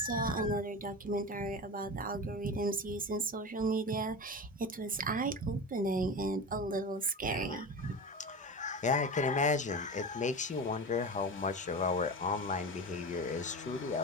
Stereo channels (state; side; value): normal; both; correlation 0.27